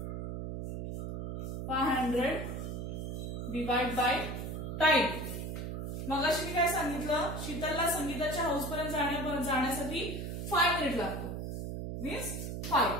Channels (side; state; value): right; noise; hum, 4 dB below the sound